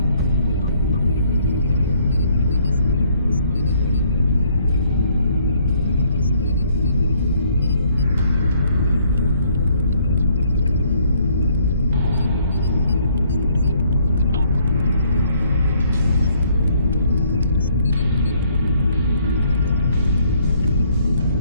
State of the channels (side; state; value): both; inverted; correlation -0.65